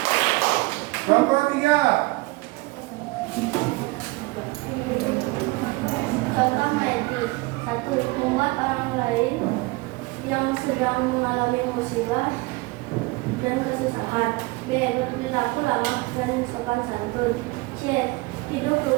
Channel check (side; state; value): left; quieter; 23.6 dB